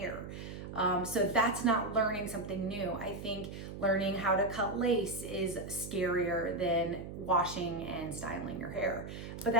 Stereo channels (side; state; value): right; noise; hum, 9 dB below the sound